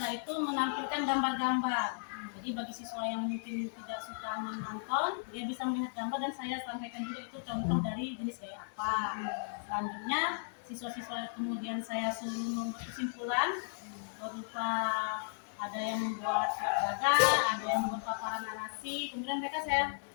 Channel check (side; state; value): right; silent; digital silence